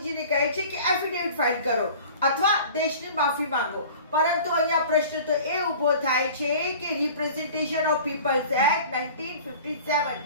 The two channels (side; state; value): both; inverted; correlation -0.43